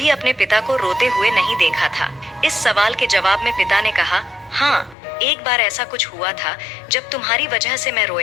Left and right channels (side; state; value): right; drops out; at 5.0 s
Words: अपने पिता को रोते हुए नहीं देखा था। इस सवाल के जवाब में पिता ने कहा, हाँ, एक बार ऐसा कुछ हुआ था जब तुम्हारी वजह से मैं